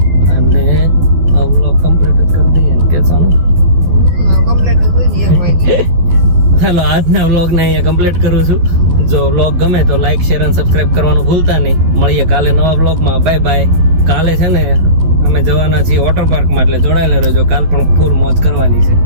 અને આ વ્લોગ કમ્પ્લીટ જ કરી દઈએ ને કે સોનું? ચાલો, આજના વ્લોગને અહીંયા કમ્પ્લીટ કરું છું. જો વ્લોગ ગમે તો લાઈક, શેર અને સબસ્ક્રાઇબ કરવાનું ભૂલતા નહીં. મળીએ કાલે નવા વ્લોગમાં. Bye bye. કાલે છે ને અમે જવાના છીએ વોટર પાર્કમાં, એટલે જોડાયેલા રહેજો. કાલ પણ ફૂલ મોજ કરવાની છે.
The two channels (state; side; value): late; left; 12 ms